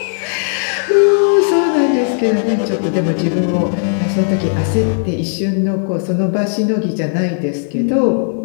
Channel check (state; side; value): silent; right; digital silence